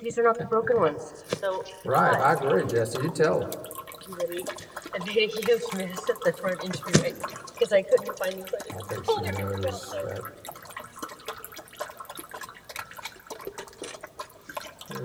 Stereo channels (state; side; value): identical; both; correlation 1.00